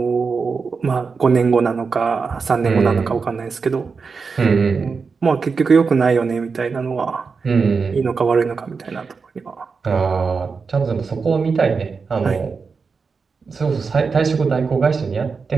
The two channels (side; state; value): left; quieter; 5.0 dB